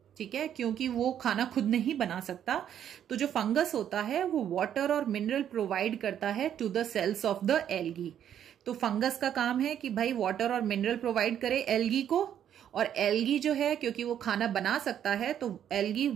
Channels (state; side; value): quieter; left; 9.8 dB